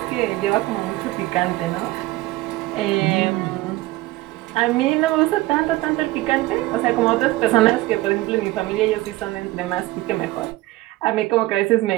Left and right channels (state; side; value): quieter; left; 18.5 dB